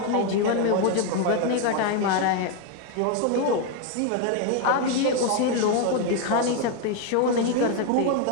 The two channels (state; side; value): different; both; correlation 0.01